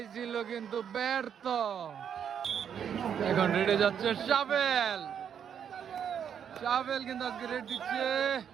ছিল কিন্তু ব্যর্থ। এখন রেডে যাচ্ছে শাবেল। শাবেল কিন্তু আজকে রেড দিচ্ছে।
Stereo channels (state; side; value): quieter; left; 8.3 dB